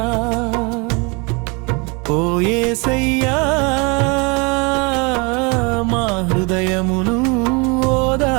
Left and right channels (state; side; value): quieter; left; 30.1 dB